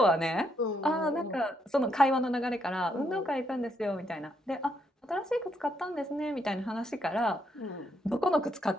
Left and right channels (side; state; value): both; normal; correlation 0.76